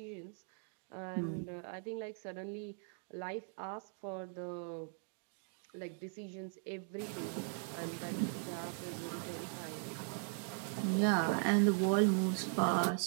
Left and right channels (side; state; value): left; silent; 52 dB below the other